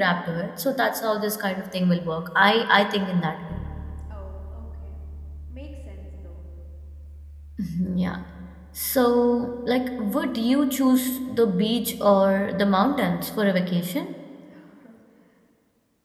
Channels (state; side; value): identical; both; correlation 1.00